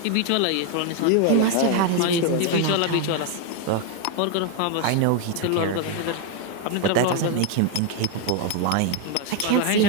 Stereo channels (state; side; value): different; both; correlation 0.01